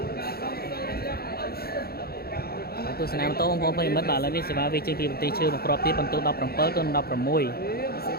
ទស្សនាម៉ូតូបងប្អូនប្រិមិត្តបាទឥឡូវនេះសេវាវាជិះពីបន្ទាយឈើមកគ្រាប់ទៀតបន្ទូ17ទៅ16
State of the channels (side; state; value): right; late; 0.45 ms